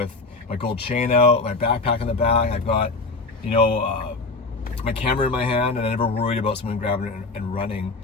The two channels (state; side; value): quieter; right; 3.6 dB